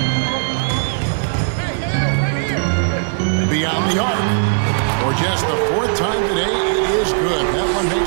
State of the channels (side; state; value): left; silent; 56 dB below the other